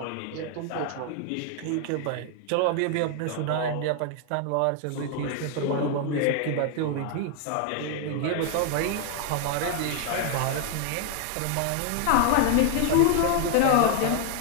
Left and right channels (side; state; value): both; different; correlation 0.00